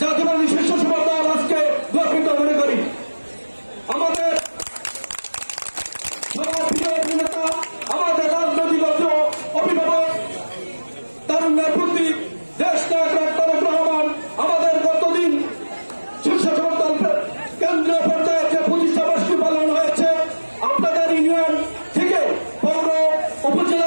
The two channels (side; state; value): both; inverted; correlation -1.00